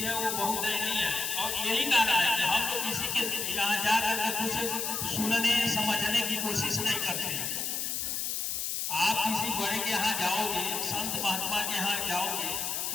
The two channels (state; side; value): noise; left; hiss, 1 dB below the sound